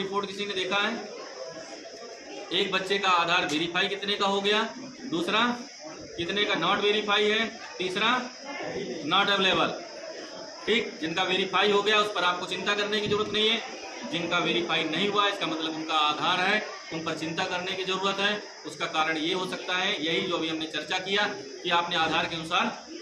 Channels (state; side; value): identical; both; correlation 1.00